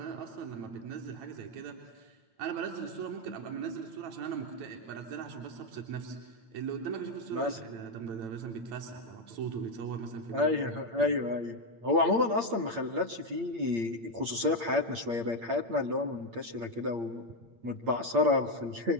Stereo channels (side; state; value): left; late; 8.7 ms